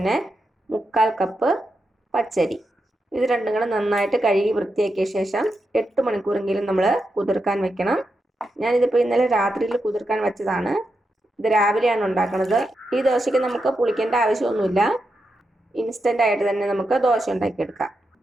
3/4 കപ്പ് പച്ചരി. ഇത് രണ്ടും കൂടെ നന്നായിട്ട് കഴുകി വൃത്തിയാക്കിയ ശേഷം 8 മണിക്കൂറെങ്കിലും നമ്മൾ കുതിർക്കാൻ വെക്കണം. ഞാനിതിപ്പോൾ ഇന്നലെ രാത്രിയിൽ കുതിർക്കാൻ വെച്ചതാണ്. ഇത് രാവിലെയാണ് ഉണ്ടാക്കുന്നത്. ഈ ദോശയ്ക്ക് നമുക്ക് പുളിക്കേണ്ട ആവശ്യമൊന്നുമില്ല. ഇൻസ്റ്റൻ്റ് ആയിട്ട് തന്നെ നമുക്ക് ദോശ ഉണ്ടാക്കിയെടുക്കാം.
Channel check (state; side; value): normal; both; correlation 0.86